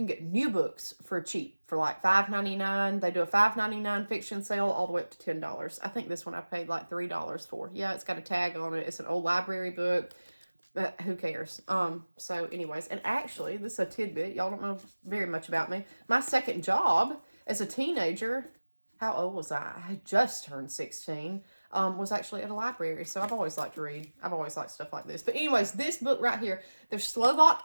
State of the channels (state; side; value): inverted; both; correlation -1.00